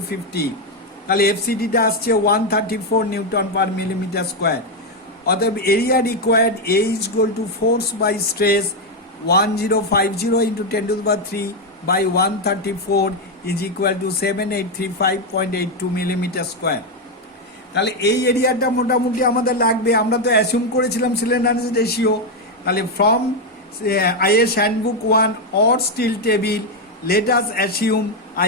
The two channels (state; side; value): normal; both; correlation 0.05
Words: তাহলে এফসিডিটা আসছে 134 নিউটন পার মিলিমিটার স্কোয়ার। অতএব area required A is equal to force by stress 1050 into 10 to the power 3 by 134 is equal to 7835.82 millimeter square. তাহলে এই এরিয়াটা মোটামুটি আমাদের লাগবে। আমরা তো অ্যাসিউম করেছিলাম স্লেন্ডারনেস রেশিও। তাহলে from IS handbook 1 or steel table, let us assume